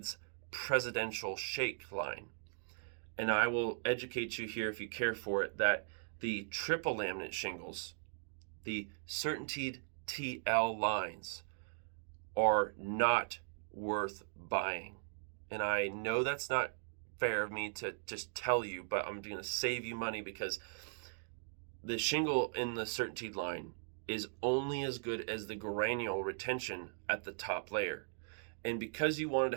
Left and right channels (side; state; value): left; silent; digital silence